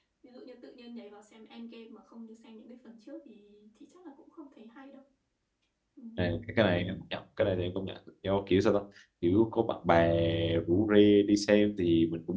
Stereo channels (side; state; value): both; identical; correlation 1.00